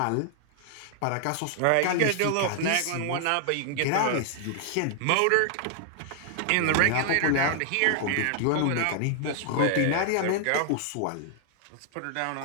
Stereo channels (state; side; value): different; both; correlation 0.00